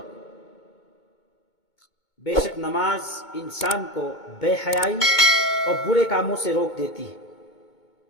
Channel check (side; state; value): right; late; 2.2 ms